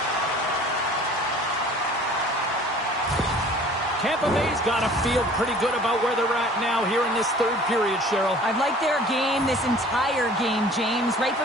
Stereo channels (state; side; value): normal; both; correlation 0.49